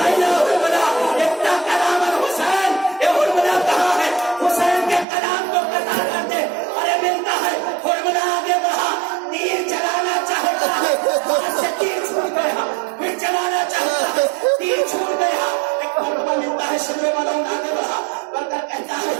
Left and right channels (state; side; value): drops out; left; at 5.1 s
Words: आईना हुरमला, इतना कलाम हुसैन, ये हुरमला कहाँ है? हुसैन के कलाम को कतार करते, अरे मिलता है। हुरमला आगे बढ़ा, तीर चलाना चाहता है, हाथ से तीर छूट गया, फिर चलाना चाहता है, तीर छूट गया। एक मौका मिलता है, शिमरे वालों आगे बढ़ा, बढ़कर कहता है,